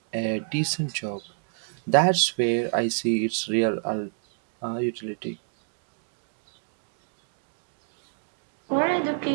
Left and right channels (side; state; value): left; silent; digital silence